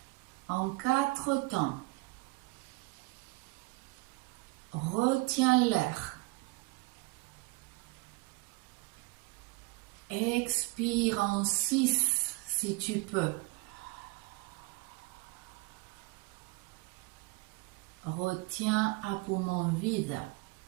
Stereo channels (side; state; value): left; quieter; 25.0 dB